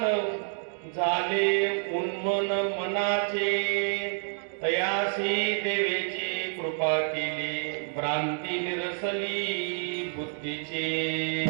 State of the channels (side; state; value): left; silent; 59 dB below the other